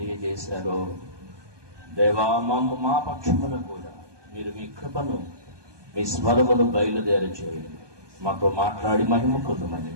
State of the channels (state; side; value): late; left; 1.2 ms